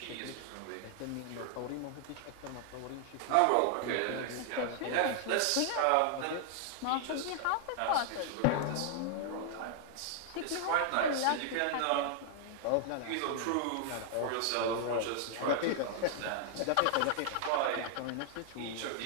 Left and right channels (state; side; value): different; both; correlation 0.00